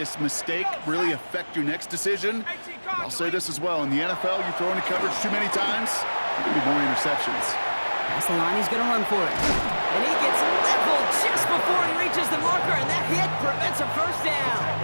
mistake really affect your next decision. I'll say this as well. In the NFL, you throw into coverage too many times, there can be more interceptions. That's the line. He's going to run for it. And he gets leveled just before he reaches the marker, and that hit prevents a first down.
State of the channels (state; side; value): inverted; both; correlation -1.00